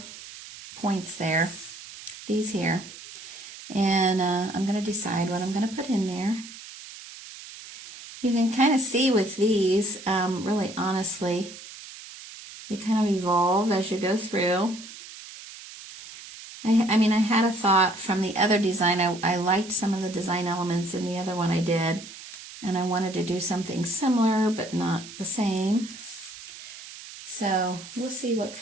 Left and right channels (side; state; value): right; noise; hiss, 15 dB below the sound